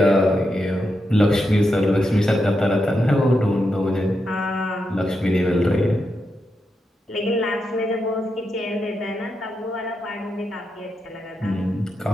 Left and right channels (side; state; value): both; normal; correlation 0.85